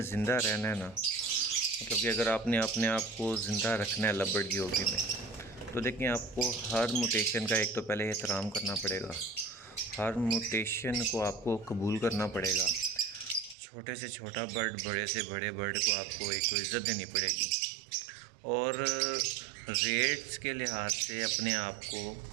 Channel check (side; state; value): left; drops out; at 13.6 s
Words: زندہ رہنا ہے نا، مطلب کہ اگر آپ نے اپنے آپ کو زندہ رکھنا ہے لو برڈ کی ہابی میں، تو دیکھیں آپ کو ہر موٹیشن کا ایک تو پہلے احترام کرنا پڑے گا، ہر موٹیشن کو آپ کو قبول کرنا پڑے گا۔ چھوٹے سے چھوٹا برڈ، بڑے سے بڑے برڈ کو آپ کو ایک تو عزت دینی پڑے گی، اور ریٹس کے لحاظ سے اپنے آپ کو